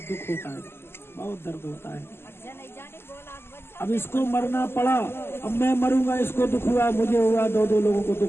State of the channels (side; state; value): right; late; 0.12 ms